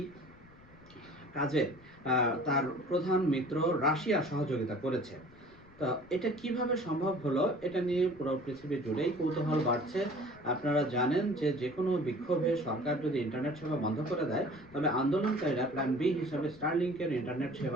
কাজে তার প্রধান মিত্র রাশিয়া সহযোগিতা করেছে। তো এটা কিভাবে সম্ভব হলো, এটা নিয়ে পুরো পৃথিবী জুড়েই কৌতূহল বাড়ছে। আপনারা জানেন যে যে কোনো বিক্ষোভে সরকার যদি ইন্টারনেট সেবা বন্ধ করে দেয়, তবে আন্দোলনকারীরা প্ল্যান বি হিসাবে স্টারলিংকের ইন্টারনেট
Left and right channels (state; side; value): noise; left; rumble, 26 dB below the sound